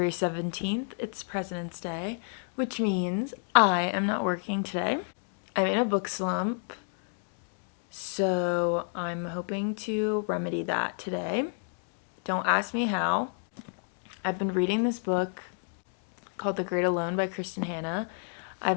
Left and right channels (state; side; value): silent; right; 58 dB below the other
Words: 17th. It's President's Day, which means I am not working today. I'm in a book slump, so I'm hoping to remedy that today. Don't ask me how. I've been reading this book called The Great Alone by Kristin Hannah.